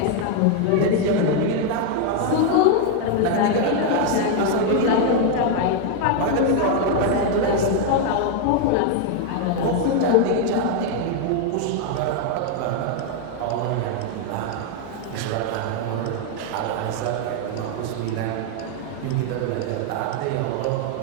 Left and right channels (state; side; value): different; both; correlation 0.00